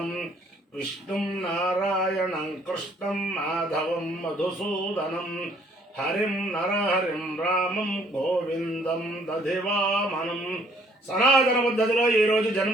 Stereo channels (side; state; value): both; normal; correlation 0.62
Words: విష్ణుం నారాయణం కృష్ణం మాధవం మధుసూదనం హరిం నరహరిం రామం గోవిందం దధివామనం. సనాతన పద్ధతిలో ఈరోజు